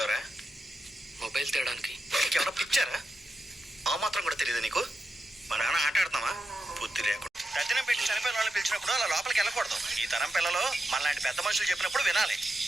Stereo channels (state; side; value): normal; both; correlation 0.88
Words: మొబైల్ తేడానికి. ఎవరో పిచ్చారా? ఆ మాత్రం కూడా తెలియదు నీకు? మా నాన్న ఆట ఆడుతున్నావా? బుద్ధి లేకుండా తద్దినం పెట్టి చనిపోయిన వాళ్ళని పిలిచినప్పుడు అలా లోపలికి వెళ్ళకూడదు. ఈ తరం పిల్లలు మనలాంటి పెద్ద మనుషులు చెప్పినప్పుడు వినాలి,